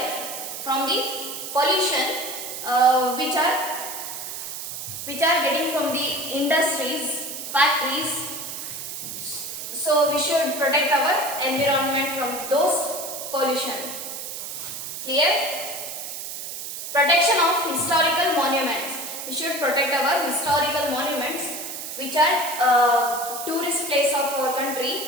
from the pollution which are getting from the industries, factories. So we should protect our environment from those pollution. Clear? Protection of historical monuments. We should protect our historical monuments which are tourist place of our country.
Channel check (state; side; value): noise; right; hiss, 7 dB below the sound